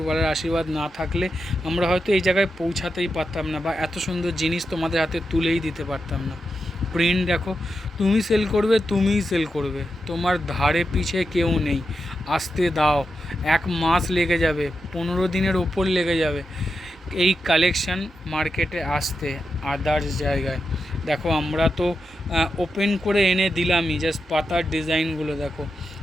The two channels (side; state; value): both; normal; correlation 0.88